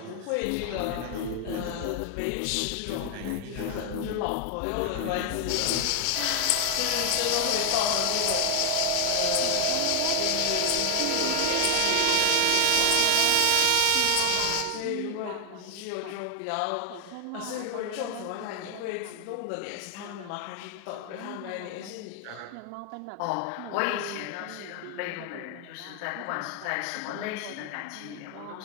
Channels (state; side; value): different; both; correlation 0.00